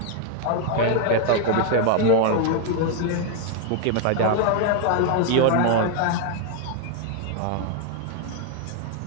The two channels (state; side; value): different; both; correlation 0.00